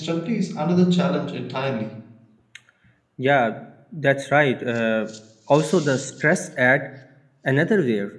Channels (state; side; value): identical; both; correlation 1.00